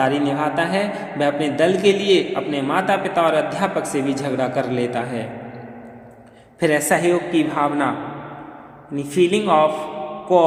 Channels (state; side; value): identical; both; correlation 1.00